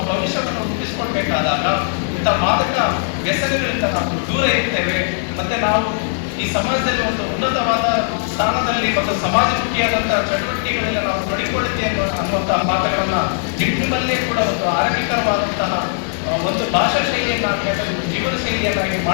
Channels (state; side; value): silent; right; digital silence